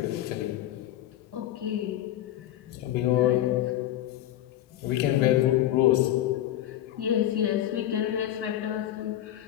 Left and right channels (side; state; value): right; quieter; 12.9 dB